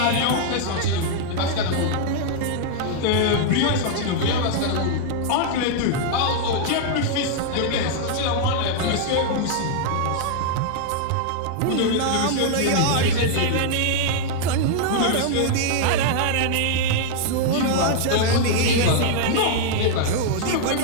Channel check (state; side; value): different; both; correlation -0.01